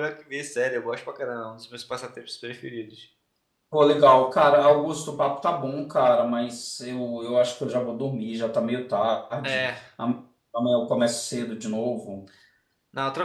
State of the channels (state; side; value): identical; both; correlation 1.00